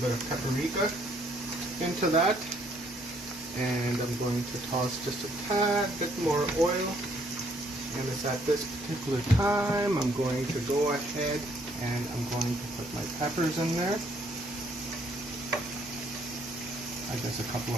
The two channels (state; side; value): normal; both; correlation 0.67